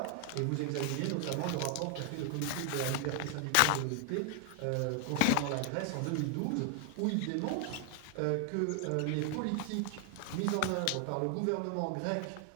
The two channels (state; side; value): different; both; correlation 0.00